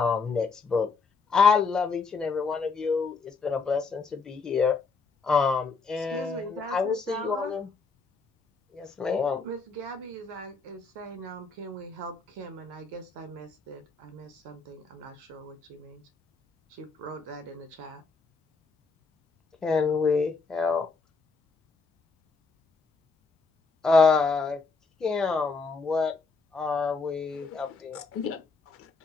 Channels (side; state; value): right; quieter; 4.5 dB